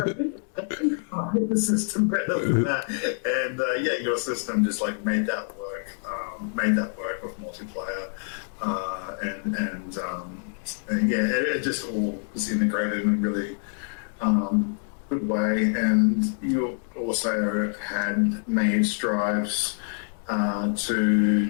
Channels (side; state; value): right; silent; digital silence